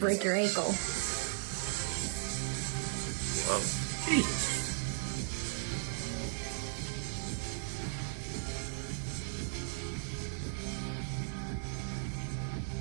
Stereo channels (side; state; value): left; silent; digital silence